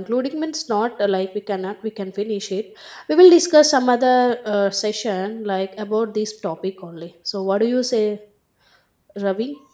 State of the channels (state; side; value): identical; both; correlation 1.00